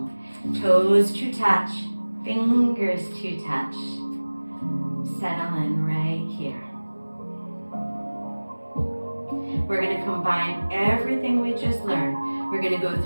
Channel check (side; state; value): both; inverted; correlation -1.00